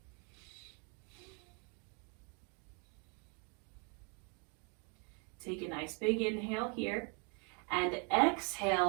Take a nice big inhale here, and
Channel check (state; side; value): quieter; left; 36.2 dB